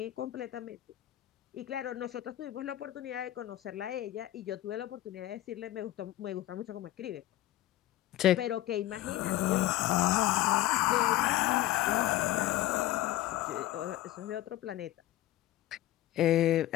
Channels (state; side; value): quieter; right; 14.8 dB